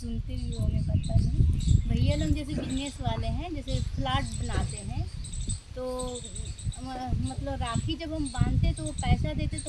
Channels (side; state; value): both; identical; correlation 1.00